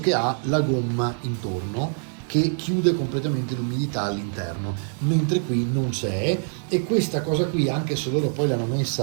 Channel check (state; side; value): silent; left; 61 dB below the other